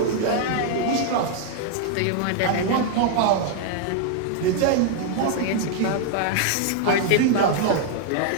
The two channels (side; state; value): both; different; correlation 0.00